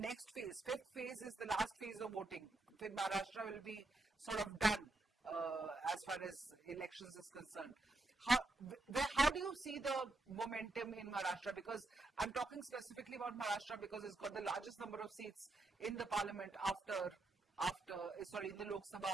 phase, 5th phase is the last phase of voting. Then Maharashtra will be sort of done as far as elections is concerned. how do you see the momentum in Maharashtra? Because I'm talking specifically about Maharashtra because it's got the largest number of seats in the parliament in the Lok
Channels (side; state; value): left; quieter; 3.0 dB